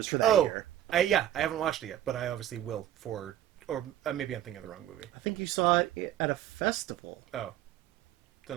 for that year. I haven't watched it yet, but I obviously will or maybe I'm thinking of the wrong movie. I think you saw it at a festival. Oh.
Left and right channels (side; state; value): left; quieter; 12.0 dB